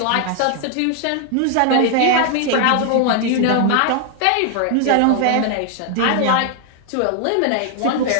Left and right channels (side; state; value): both; different; correlation 0.00